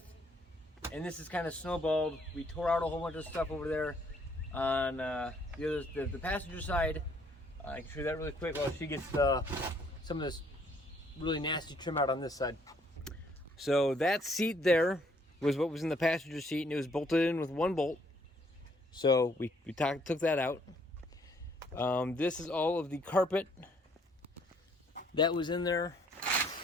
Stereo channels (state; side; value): normal; both; correlation 0.65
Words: and this is kind of snowballed. We tore out a whole bunch of stuff over there on the passenger side. I can show you that really quick while she gets some of this really nasty trim out on this side. So that seat there was what was in the passenger seat, and it was bolted in with one bolt. So we took that out. This is all of the carpet that was in there.